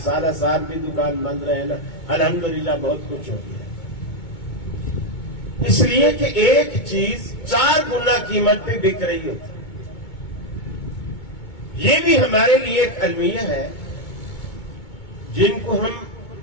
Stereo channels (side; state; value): right; late; 2.2 ms